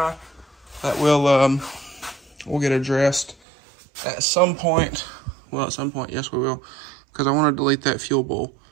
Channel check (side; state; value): left; drops out; at 3.4 s